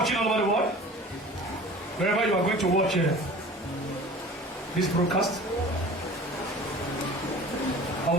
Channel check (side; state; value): both; normal; correlation 0.42